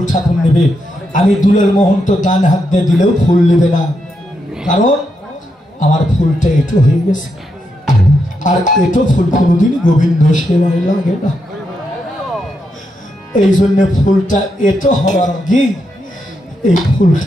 ঠাকুর নেবে। আমি দুলের মোহন তো ডান হাত দিয়ে দিলেও ফুল নেবে না, কারণ আমার ফুলটা এটো হয়ে গেছে। আর এটো ফুল কোনোদিন গোবিন্দ সেবায় লাগে না। এই জন্য ফুলটা এটো হওয়ার আগে এই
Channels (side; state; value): both; normal; correlation 0.82